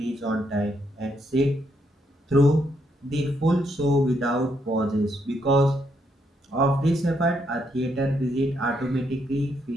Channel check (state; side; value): normal; both; correlation 0.76